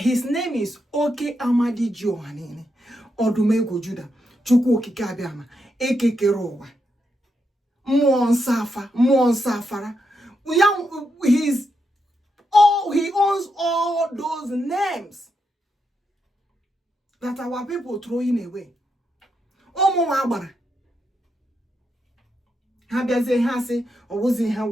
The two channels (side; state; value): both; normal; correlation 0.83